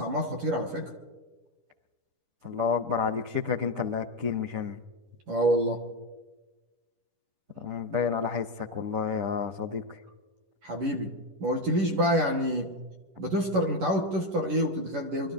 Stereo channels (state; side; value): late; left; 11 ms